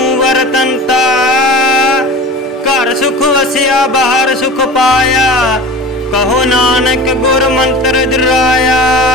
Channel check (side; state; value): both; normal; correlation 0.36